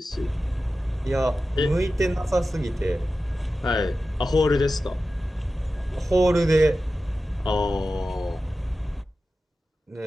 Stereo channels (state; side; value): normal; both; correlation 0.93